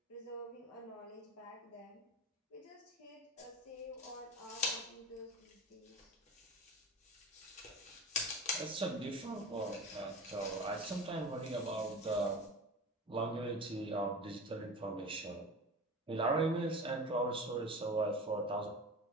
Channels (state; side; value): normal; both; correlation 0.32